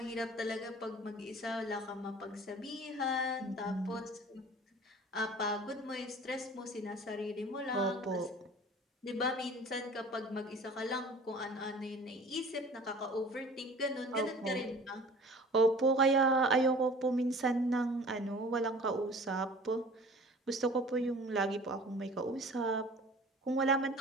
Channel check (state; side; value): normal; both; correlation 0.45